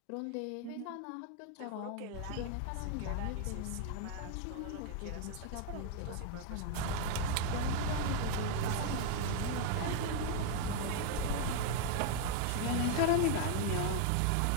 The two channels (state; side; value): different; both; correlation 0.01